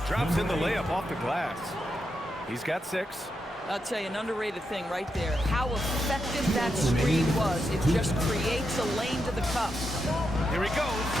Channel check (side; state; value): both; normal; correlation 0.85